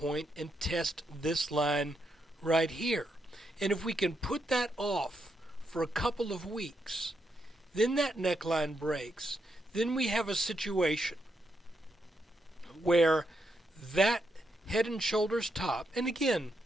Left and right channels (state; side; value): normal; both; correlation 0.81